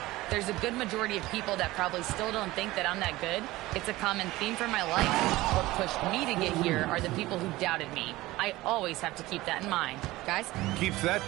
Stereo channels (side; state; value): left; quieter; 18.5 dB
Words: There's a good majority of people that probably still don't think that I'm that good. It's a common theme for my life. What pushed me to get here are the people who doubted me. I always have to keep that in mind. Guys? Keeps that